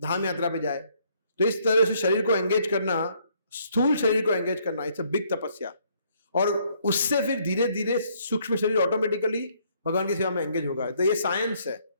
यात्रा पे जाए। तो इस तरह से शरीर को एंगेज करना, स्थूल शरीर को एंगेज करना, इट्स अ बिग तपस्या। और उससे फिर धीरे धीरे सूक्ष्म शरीर ऑटोमेटिकली भगवान की सेवा में एंगेज होगा। तो ये साइंस है।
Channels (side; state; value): both; inverted; correlation -0.67